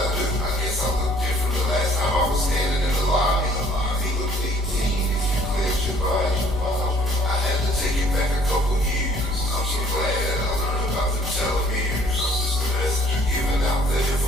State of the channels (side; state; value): both; normal; correlation 0.58